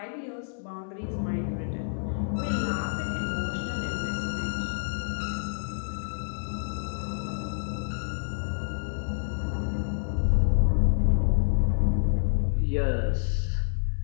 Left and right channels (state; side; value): silent; right; 59 dB below the other